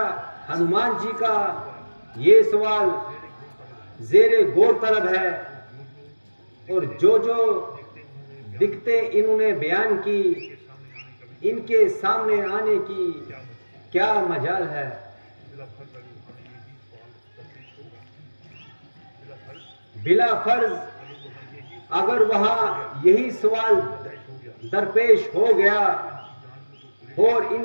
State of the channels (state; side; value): inverted; both; correlation -1.00